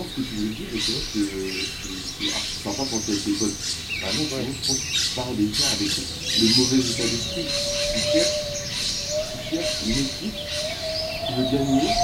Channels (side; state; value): both; identical; correlation 1.00